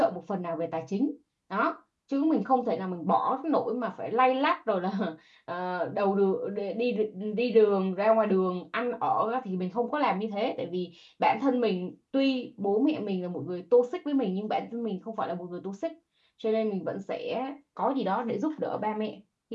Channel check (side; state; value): both; identical; correlation 1.00